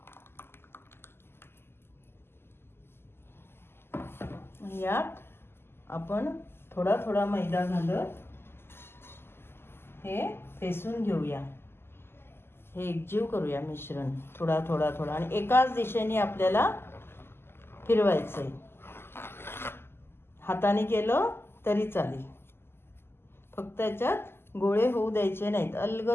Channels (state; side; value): late; right; 0.12 ms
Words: यात आपण थोडा थोडा मैदा घालत हे फेसून घेऊया. हे एकजीव करूया मिश्रण थोडा थोडा थोडा, आणि एकाच दिशेने आपल्याला फिरवायचंय. हाताने केलं तरी चालेल, फक्त याच्यात गोळे होऊ द्यायचे नाहीत.